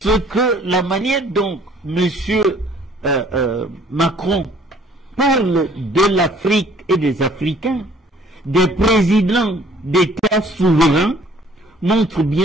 la manière dont M. Macron parle de l'Afrique et des Africains, des présidents d'États souverains, montre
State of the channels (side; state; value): both; normal; correlation 0.57